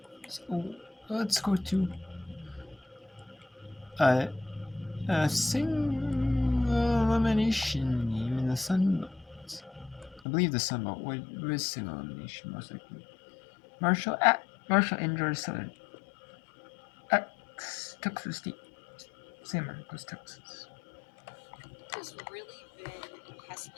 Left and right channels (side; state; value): right; drops out; at 10.2 s